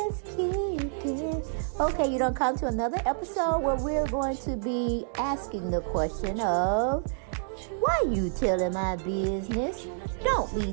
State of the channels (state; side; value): silent; left; digital silence